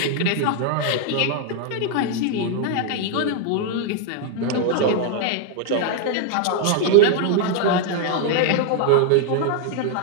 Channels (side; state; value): both; different; correlation 0.00